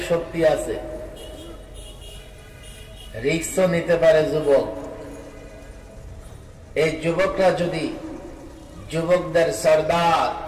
শক্তি আছে, রিস্কও নিতে পারে যুবক। এই যুবকরা যদি যুবকদের সরদার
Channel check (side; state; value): both; identical; correlation 1.00